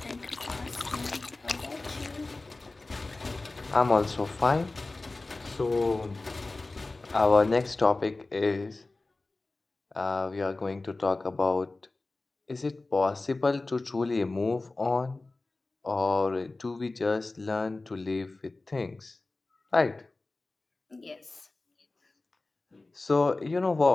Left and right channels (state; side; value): quieter; right; 3.2 dB